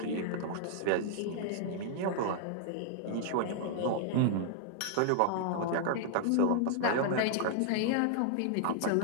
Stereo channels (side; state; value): both; different; correlation -0.01